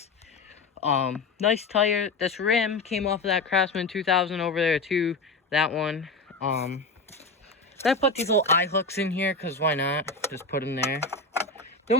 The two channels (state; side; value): quieter; right; 3.6 dB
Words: Nice tire. This rim came off of that Craftsman 2000 over there too. That one. I put these little eye hooks in here because why not? Just put them there.